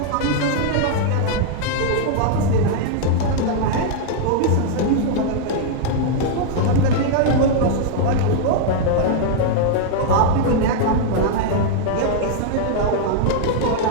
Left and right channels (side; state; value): both; different; correlation -0.01